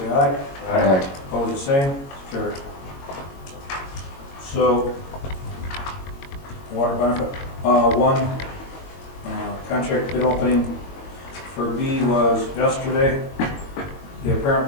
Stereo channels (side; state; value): right; late; 22 ms